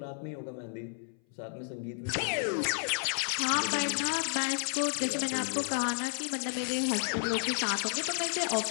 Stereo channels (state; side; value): silent; right; 57 dB below the other